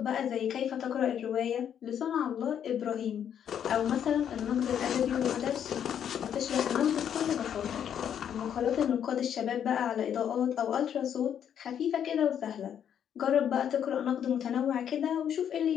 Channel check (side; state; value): right; quieter; 9.0 dB